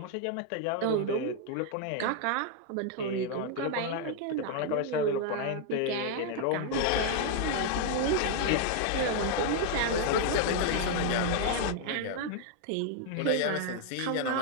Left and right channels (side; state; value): both; different; correlation 0.00